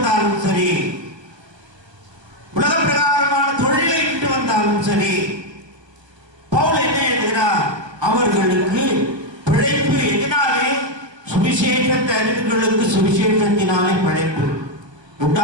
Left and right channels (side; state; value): left; late; 1.3 ms